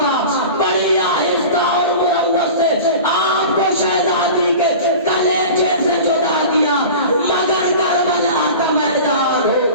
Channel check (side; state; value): both; inverted; correlation -0.36